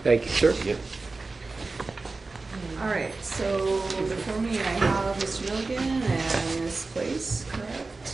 Thank you, sir. Yep. All right, so before me I have Mr. Milligan and Ms. Place,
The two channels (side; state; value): left; quieter; 3.7 dB